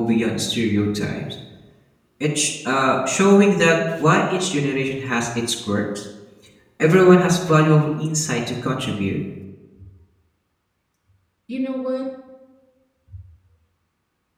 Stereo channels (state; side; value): identical; both; correlation 1.00